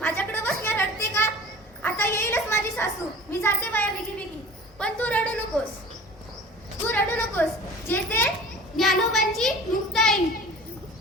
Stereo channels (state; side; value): normal; both; correlation 0.42